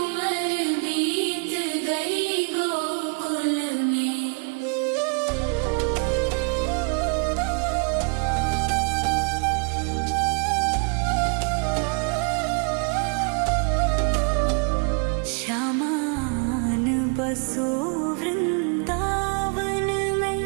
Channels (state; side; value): quieter; left; 36.5 dB